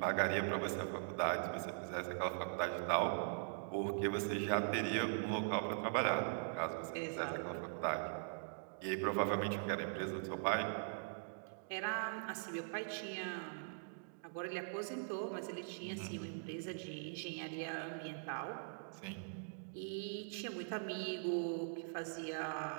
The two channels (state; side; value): silent; left; digital silence